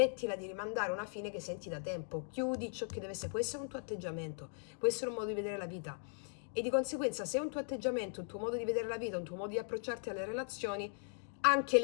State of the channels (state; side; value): silent; right; 52 dB below the other